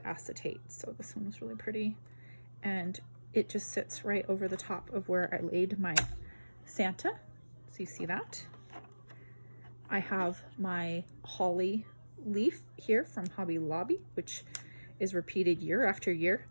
acetate. So this one was really pretty. And it just sits right over the top of where I laid my Santa. So you see that. I have my holly leaf here from Hobby Lobby, which is repeated year after year.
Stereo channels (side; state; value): both; inverted; correlation -1.00